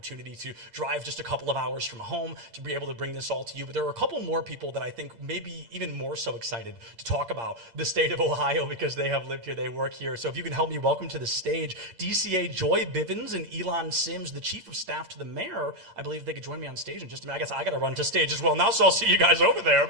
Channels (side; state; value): left; late; 8.7 ms